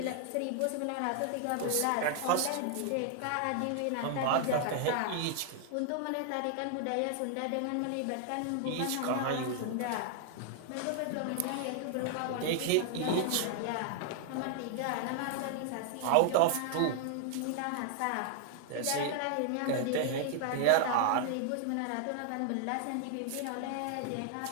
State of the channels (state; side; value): different; both; correlation 0.00